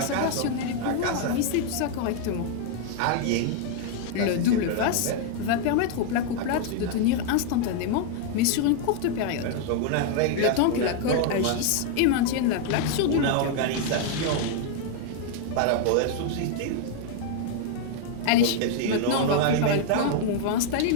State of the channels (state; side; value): different; both; correlation 0.00